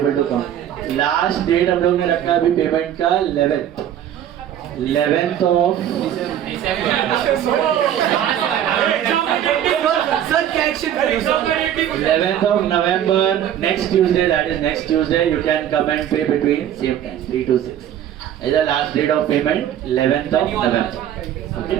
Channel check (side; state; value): left; quieter; 10.6 dB